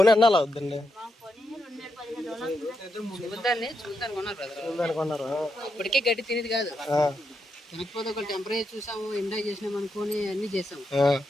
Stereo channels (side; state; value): both; normal; correlation 0.83